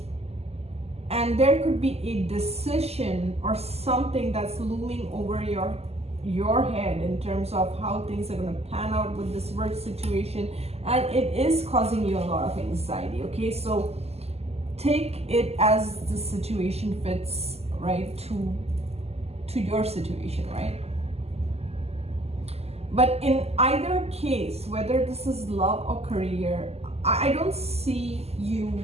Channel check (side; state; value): left; late; 0.30 ms